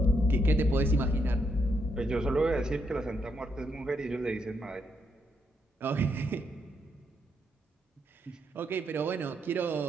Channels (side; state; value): both; normal; correlation 0.78